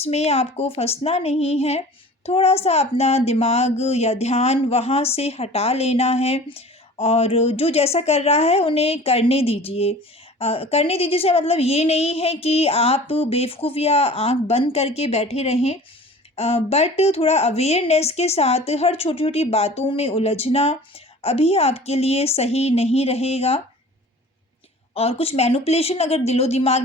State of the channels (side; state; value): both; normal; correlation 0.43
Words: में आपको फँसना नहीं है, थोड़ा-सा अपना दिमाग या ध्यान वहाँ से हटा लेना है और जो जैसा कर रहा है उन्हें करने दीजिए। करने दीजिए से मतलब ये नहीं है कि आप बेवकूफ़ या आँख बंद करके बैठे रहें। बट थोड़ा अवेयरनेस के साथ हर छोटी-छोटी बातों में उलझना अभी आपके लिए सही नहीं रहेगा। और कुछ मैनिपुलेशन अगर दिलो-दिमाग